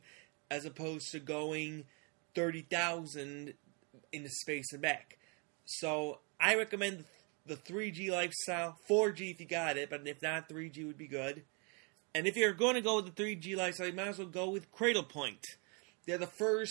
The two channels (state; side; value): quieter; left; 34.4 dB